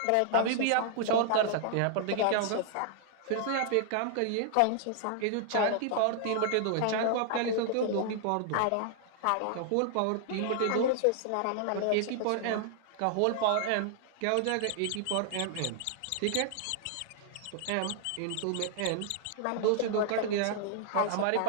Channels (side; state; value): both; different; correlation 0.00